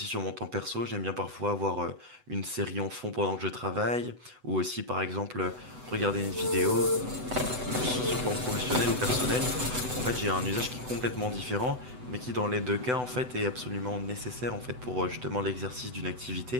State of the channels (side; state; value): left; late; 8.0 ms